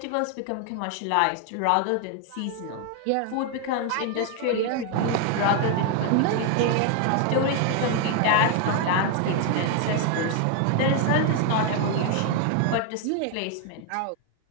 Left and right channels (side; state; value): both; different; correlation 0.01